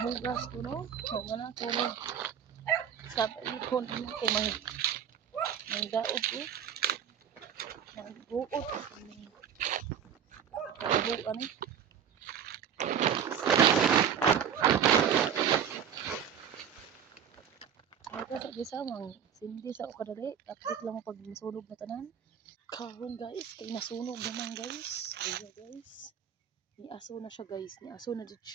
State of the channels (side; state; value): left; quieter; 8.5 dB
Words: ko no, wala ko no. Tapay ko ninyo kay mga daon ko. Mag-buot ko kabuan eh. Sa gisamang sindi sa kadali, update lang pag masunog na tanan. Karon guys, kay nasunog naman guys. Ayo guys. Ni aso na siya guys, ni aso na jud